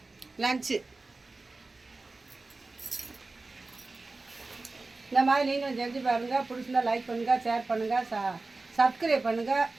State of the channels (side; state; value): left; quieter; 3.5 dB